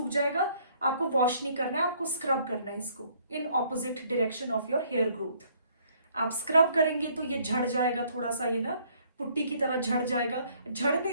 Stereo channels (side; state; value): both; inverted; correlation -0.63